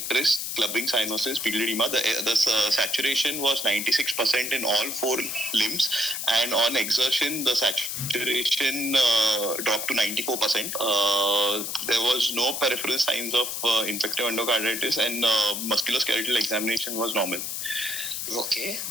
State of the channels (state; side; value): noise; left; hiss, 4 dB below the sound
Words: clubbing cyanosis, pupil edema. The saturation was 96% in all 4 limbs, and on exertion, the saturation dropped to 94%. There was no peripheral signs of infective endocarditis, and musculoskeletal examination was normal. Okay.